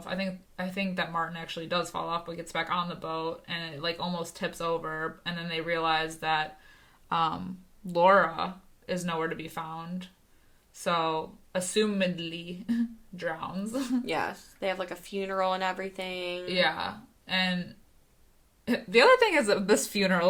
I think that Martin actually does fall off, but gets back on the boat, and it, like, almost tips over, and then they realize that Laura is nowhere to be found. So, assumedly, drowns. Yes. They have, like, a funeral and everything. Yeah. And the other thing is this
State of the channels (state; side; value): identical; both; correlation 1.00